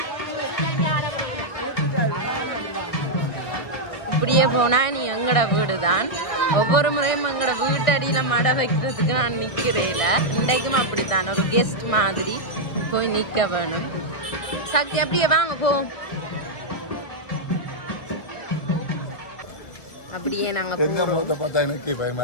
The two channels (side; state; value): right; late; 1.6 ms